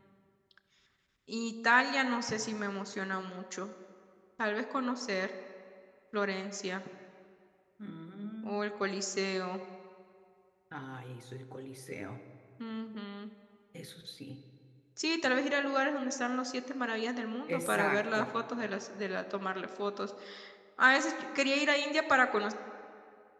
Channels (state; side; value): identical; both; correlation 1.00